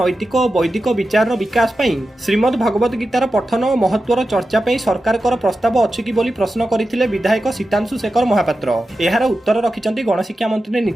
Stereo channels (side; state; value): both; normal; correlation 0.92